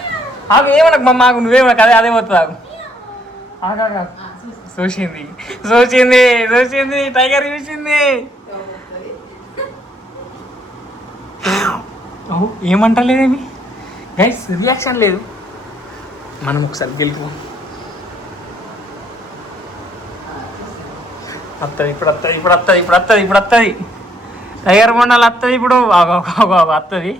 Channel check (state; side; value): normal; both; correlation 0.69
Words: ఆగు ఏమనకు మమ్మ, ఆగు నువ్వేమనకు. అదే పోతుంది. ఆగు చూసింది టైగర్ చూసింది. ఏమంటలేదేమి గైస్, రియాక్షన్ లేదు. మనం ఒకసారి గెలుపు వస్తుంది ఇప్పుడు వస్తుంది టైగర్ బొండాలు వస్తుంది ఇప్పుడు వస్తుంది.